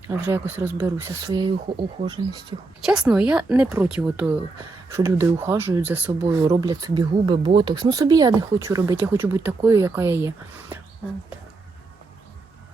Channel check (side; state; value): left; quieter; 3.6 dB